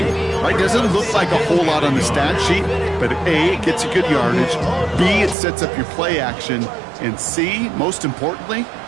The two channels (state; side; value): drops out; left; at 5.4 s